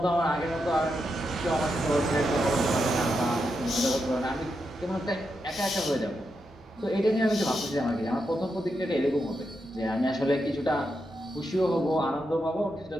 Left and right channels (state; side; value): normal; both; correlation 0.85